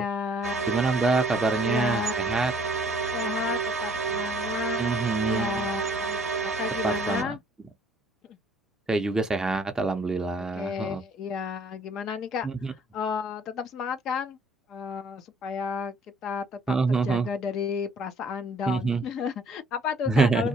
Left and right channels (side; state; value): both; normal; correlation 0.59